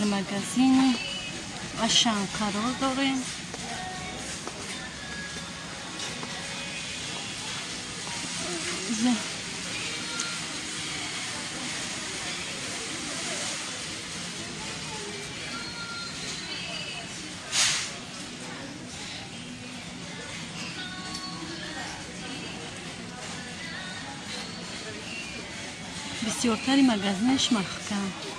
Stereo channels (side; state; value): both; identical; correlation 1.00